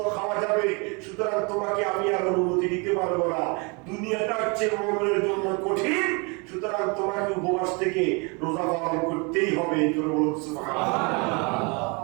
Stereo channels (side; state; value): left; quieter; 31.4 dB